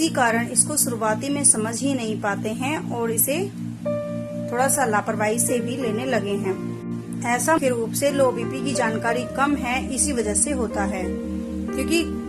कारण इसको शुरुआती में समझ ही नहीं पाते हैं और इसे थोड़ा सा लापरवाही से भी लेने लगे हैं। ऐसा मुख्य रूप से लो बीपी की जानकारी कम है इसी वजह से होता है, क्योंकि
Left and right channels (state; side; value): identical; both; correlation 1.00